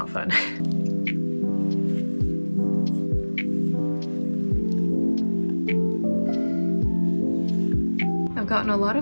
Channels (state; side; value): inverted; both; correlation -1.00